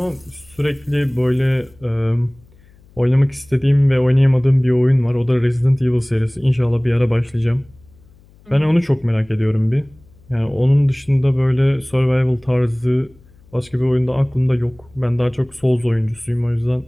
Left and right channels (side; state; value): left; noise; hum, 28 dB below the sound